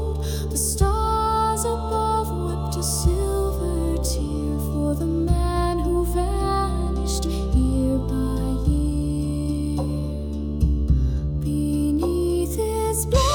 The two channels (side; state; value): both; identical; correlation 1.00